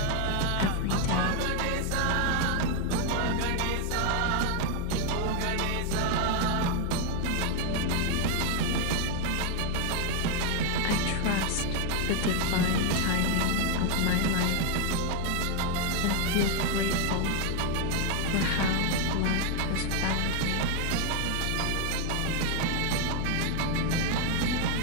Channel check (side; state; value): both; different; correlation 0.00